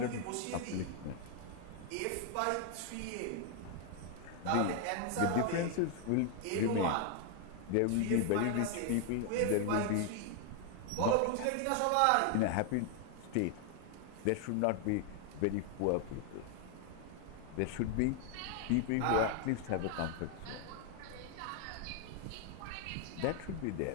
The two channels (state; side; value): different; both; correlation 0.01